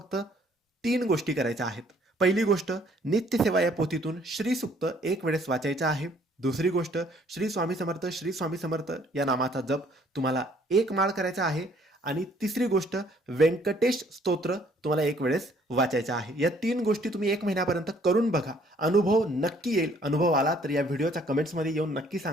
3 गोष्टी करायच्या आहेत. पहिली गोष्ट, नित्यसेवा या पोथीतून श्रीसूक्त 1 वेळेस वाचायचं आहे. दुसरी गोष्ट, श्री स्वामी समर्थ, श्री स्वामी समर्थ या नामाचा जप तुम्हाला 1 माळ करायचा आहे. आणि तिसरी गोष्ट, व्यंकटेश स्तोत्र तुम्हाला 1 वेळेस वाचायचं आहे. या 3 गोष्टी तुम्ही 1 महिन्यापर्यंत करून बघा. अनुभव नक्की येईल. अनुभव आला तर या व्हिडिओच्या कमेंट्समध्ये येऊन नक्की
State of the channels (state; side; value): normal; both; correlation 0.62